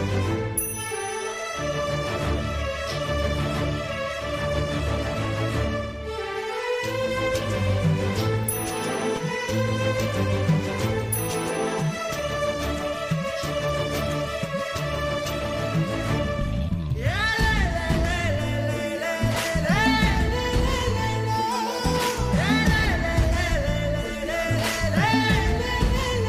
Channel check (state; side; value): identical; both; correlation 1.00